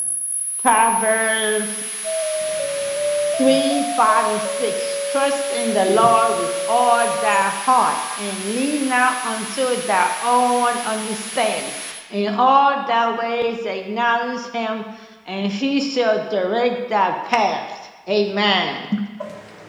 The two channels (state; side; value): identical; both; correlation 1.00